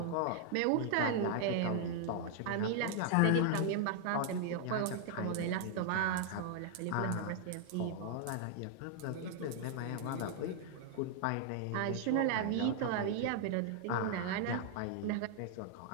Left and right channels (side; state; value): both; different; correlation 0.00